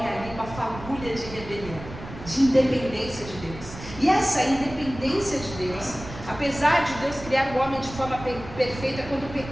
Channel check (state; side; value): noise; right; rumble, 13 dB below the sound